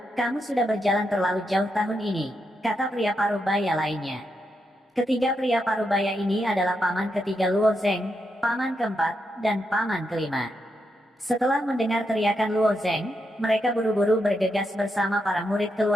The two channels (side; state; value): both; normal; correlation 0.83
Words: kamu sudah berjalan terlalu jauh tahun ini, kata pria parubaya lainnya. Ketiga pria parubaya ini adalah paman ketiga Luo Zheng, paman keempat, dan paman kelima. Setelah mendengar teriakan Luo Zheng, mereka buru-buru bergegas bersama para murid